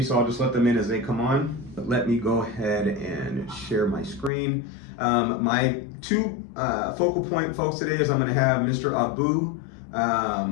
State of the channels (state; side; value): drops out; right; at 4.3 s